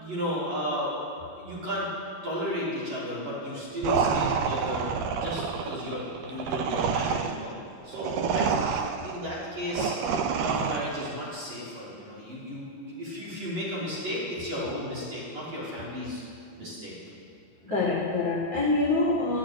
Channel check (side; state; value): left; late; 11 ms